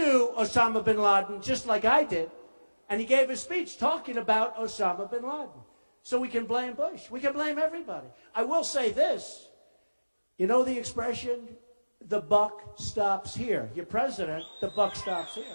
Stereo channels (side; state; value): both; inverted; correlation -1.00